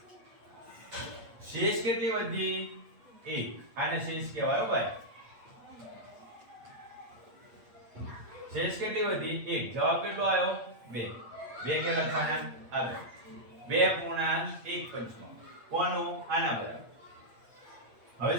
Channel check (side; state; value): left; late; 8.5 ms